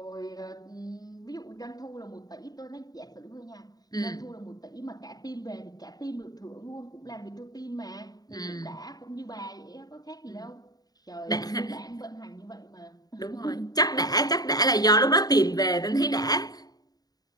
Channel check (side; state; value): right; late; 0.18 ms